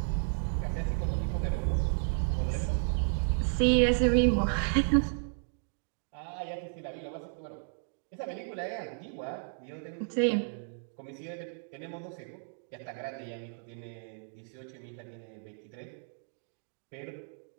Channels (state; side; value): silent; left; digital silence